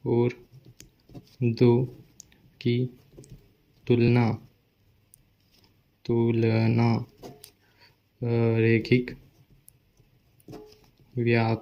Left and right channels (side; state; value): both; identical; correlation 1.00